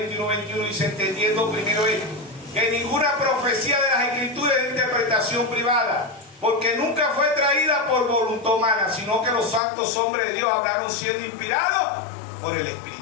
y 1:21 dice, entendiendo primero esto, que ninguna profecía de las Escrituras es de interpretación privada, porque nunca fue traída por voluntad humana, sino que los santos hombres de Dios hablaron siendo inspirados por el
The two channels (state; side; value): drops out; right; at 9.6 s